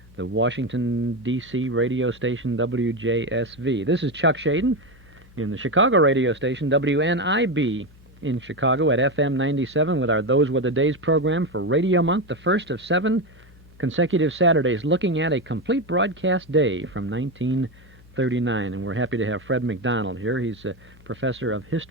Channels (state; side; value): normal; both; correlation 0.13